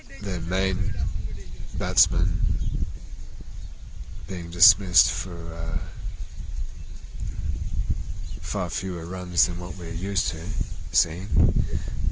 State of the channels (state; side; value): identical; both; correlation 1.00